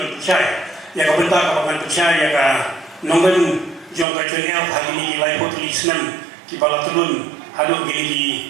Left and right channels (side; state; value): left; drops out; at 4.0 s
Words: ban percaya ya ka benta ka ban percaya ya ka nang lim jong ekchania hari ni lai potli senam ki bala turun hadu